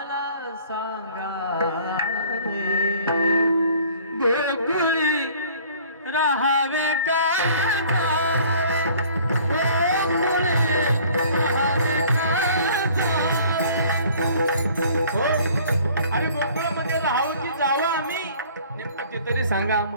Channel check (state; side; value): inverted; both; correlation -0.53